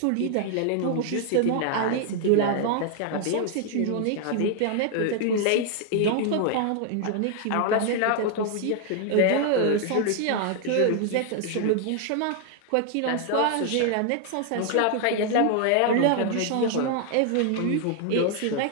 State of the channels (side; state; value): both; different; correlation 0.00